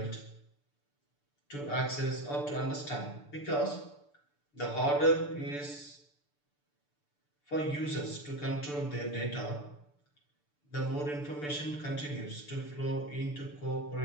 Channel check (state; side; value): late; right; 6.8 ms